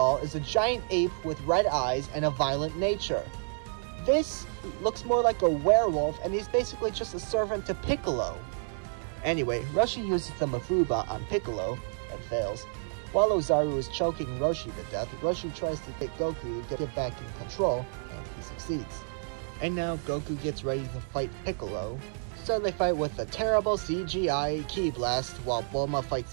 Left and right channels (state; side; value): silent; left; digital silence